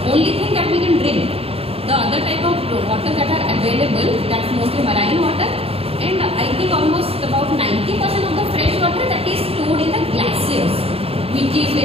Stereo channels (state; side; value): late; left; 0.28 ms